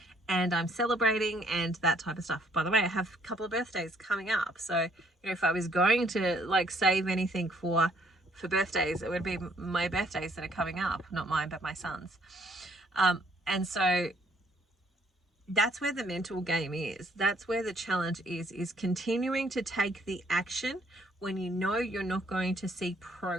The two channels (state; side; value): normal; both; correlation 0.66